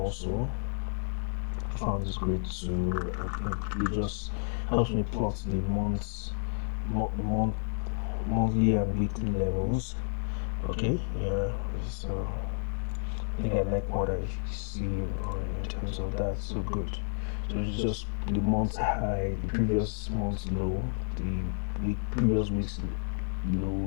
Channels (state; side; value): silent; right; 57 dB below the other